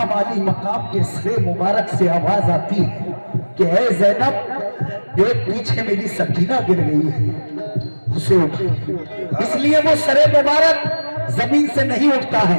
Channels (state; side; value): inverted; both; correlation -1.00